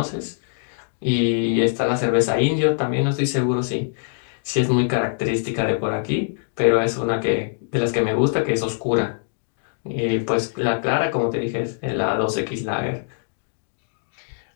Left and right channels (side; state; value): right; silent; digital silence